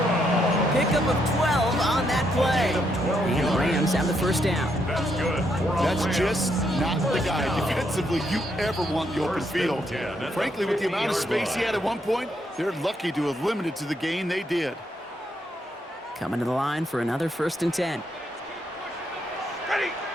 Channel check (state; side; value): normal; both; correlation 0.77